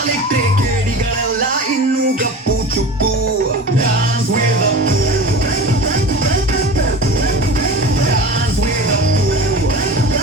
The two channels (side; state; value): both; normal; correlation 0.34